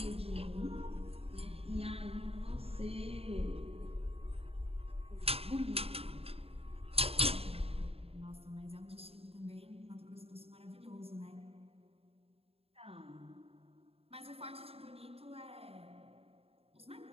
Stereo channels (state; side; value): late; left; 0.28 ms